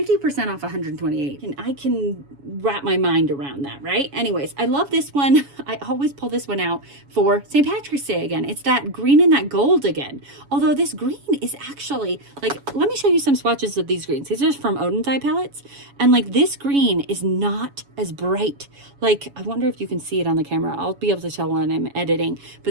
off 128, and I can wrap my mind around that, right? Anyways, I love this one. I always pull this one out for St. Patrick's Day again. It's that green and that gold again. Although this green is actually, like, let me show you some swatches of these greens. These are from Odin's Eye palettes. And like this green is not as bright. Like, I wonder if you can see it on the camera. I'll be able to tell when I'm editing,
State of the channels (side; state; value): left; late; 7.1 ms